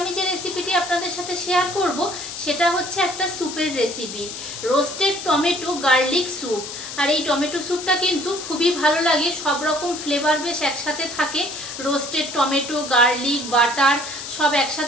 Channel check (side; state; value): left; noise; hiss, 9 dB below the sound